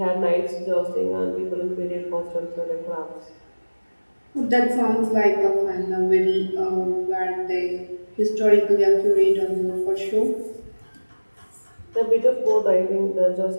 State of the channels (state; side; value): inverted; both; correlation -1.00